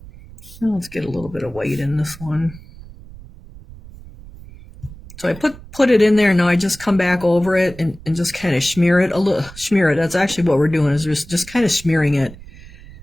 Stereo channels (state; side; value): noise; right; rumble, 18 dB below the sound